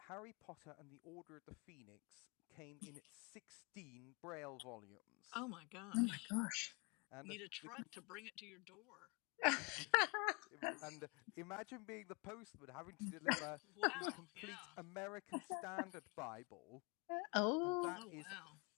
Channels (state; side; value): quieter; right; 30.2 dB